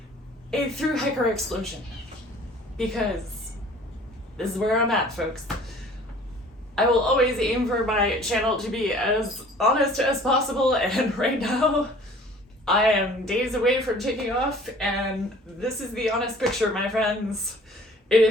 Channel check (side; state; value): both; normal; correlation 0.50